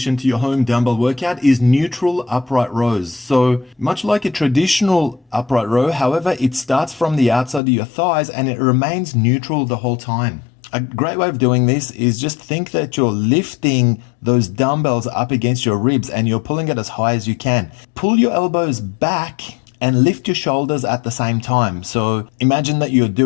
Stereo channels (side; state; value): right; drops out; at 7.6 s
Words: to your home dumbbell workout is neutral upright rows. So much like a traditional upright row, however, it starts from the outside of your thighs and it remains neutral the whole time. A great way of doing this is just think that you're lifting those dumbbells up against your ribs and you're pulling it as high as you can. Pull your elbows back and lift your shoulders at the same time. So imagine that you're